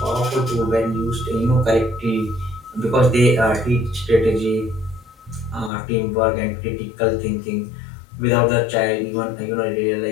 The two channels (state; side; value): drops out; right; at 5.7 s